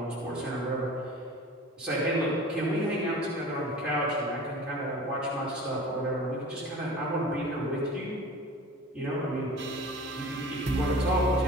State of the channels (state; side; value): normal; both; correlation 0.40